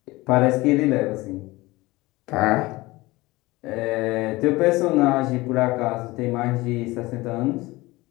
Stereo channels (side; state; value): right; quieter; 20.8 dB